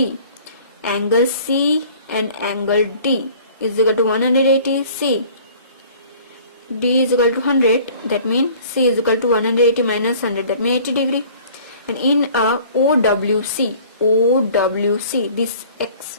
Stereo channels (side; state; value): both; inverted; correlation -0.50